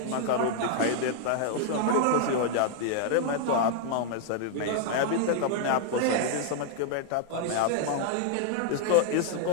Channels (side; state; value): both; different; correlation -0.01